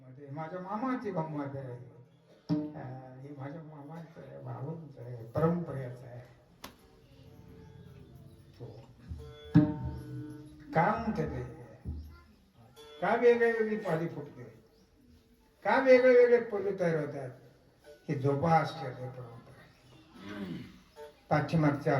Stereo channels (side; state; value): both; identical; correlation 1.00